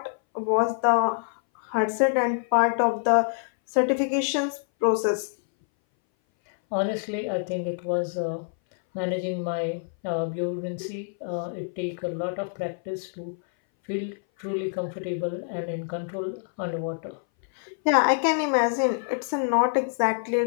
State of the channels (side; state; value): right; silent; 59 dB below the other